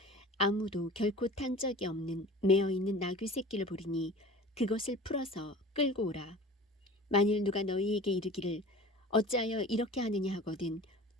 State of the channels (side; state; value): both; normal; correlation 0.40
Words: 아무도 결코 탄 적이 없는 매어있는 나귀 새끼를 보리니 그것을 풀어서 끌고 오라. 만일 누가 너희에게 이르기를 어찌하여 이렇게 하느냐 하거든